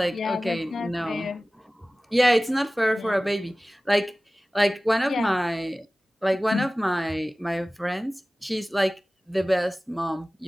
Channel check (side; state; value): both; normal; correlation 0.97